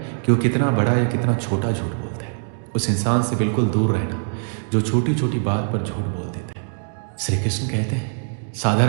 कि वो कितना बड़ा या कितना छोटा झूठ बोलता है। उस इंसान से बिल्कुल दूर रहना जो छोटी छोटी बात पर झूठ बोल देता है। श्री कृष्ण कहते हैं,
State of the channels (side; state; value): left; silent; digital silence